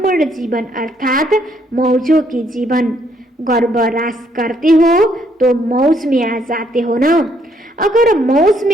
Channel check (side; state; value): both; normal; correlation 0.69